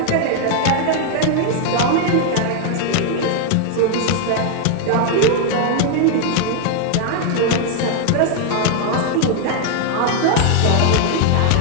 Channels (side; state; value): both; different; correlation 0.00